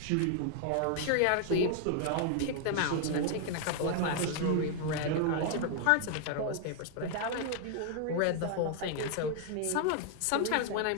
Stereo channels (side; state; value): both; different; correlation 0.00